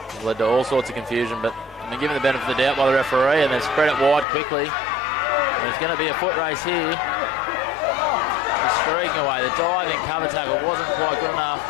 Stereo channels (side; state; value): right; drops out; at 4.2 s